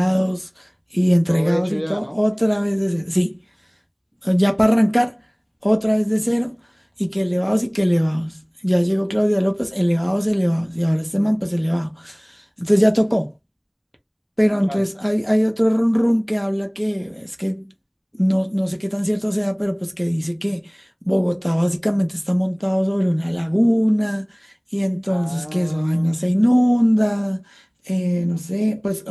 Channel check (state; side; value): identical; both; correlation 1.00